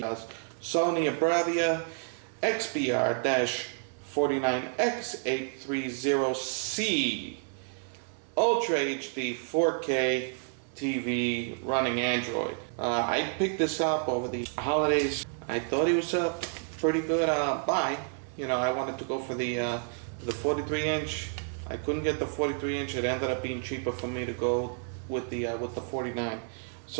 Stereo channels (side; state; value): left; silent; 58 dB below the other